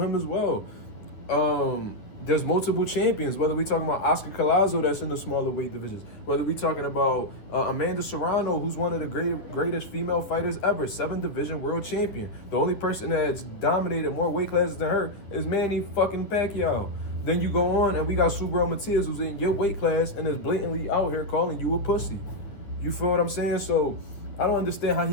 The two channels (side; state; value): right; late; 9.7 ms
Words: as well. There's multiple champions, whether we talking about Oscar Collazo that's in the smaller weight divisions, whether we talking about Amanda Serrano, who's one of the greatest female fighters ever, 7-division world champion. The only person that's dominated more weight classes than her is Manny fucking Pacquiao. Then you go on and we got Subriel Matias, who's in your weight class and is blatantly out here calling you a pussy. You feel what I'm saying? So I don't understand how